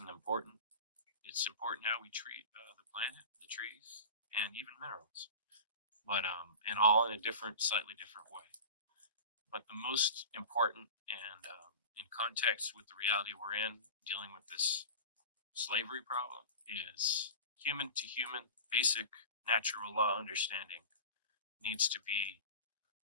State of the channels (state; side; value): inverted; both; correlation -0.32